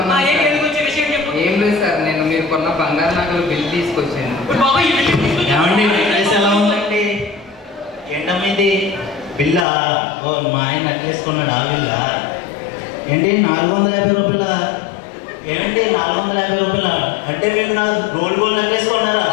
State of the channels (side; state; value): right; drops out; at 9.7 s